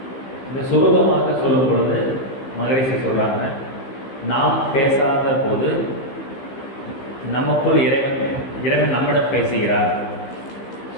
இந்த சுருக்கமாக சொல்லும் பொழுது மகரிஷி சொல்கிறாங்க, நாம் பேசாத போது நமக்குள் இறைவன் நம்மிடம் பேசுகிறார்.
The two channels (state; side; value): late; right; 15 ms